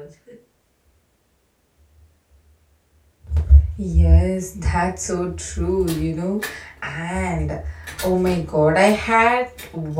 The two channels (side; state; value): both; identical; correlation 1.00